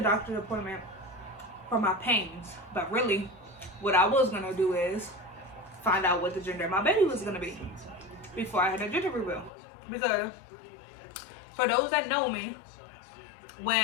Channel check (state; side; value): drops out; right; at 9.5 s